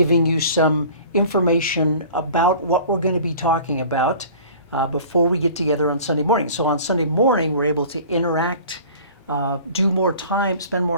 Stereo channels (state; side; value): late; left; 2.3 ms